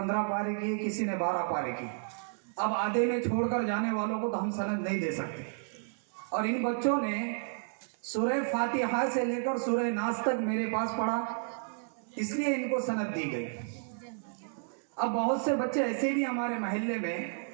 پارے کیے، کسی نے 12 پارے کیے۔ اب آدھے میں چھوڑ کر جانے والوں کو تو ہم سند نہیں دے سکتے، اور ان بچوں نے سورہ فاتحہ سے لے کر سورہ ناس تک میرے پاس پڑھا، اس لیے ان کو سند دی گئی۔ اب بہت سے بچے ایسے بھی ہمارے محلے میں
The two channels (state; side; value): silent; left; digital silence